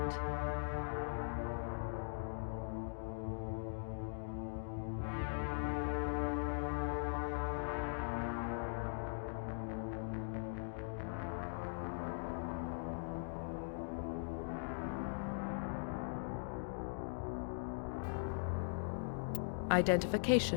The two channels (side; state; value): right; silent; digital silence